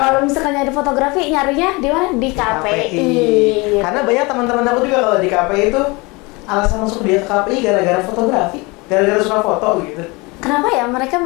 misalkan nyari fotografi, nyarinya di mana? Di KPI. Gitu. Karena banyak teman-teman aku juga kalau di KPI itu alasan masuk dia ke KPI gara-gara fotografi, gara-gara suka foto gitu. Kenapa ya mereka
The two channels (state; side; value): quieter; right; 25.9 dB